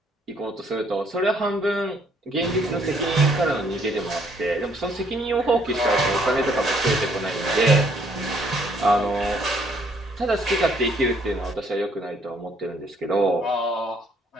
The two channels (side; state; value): both; normal; correlation 0.66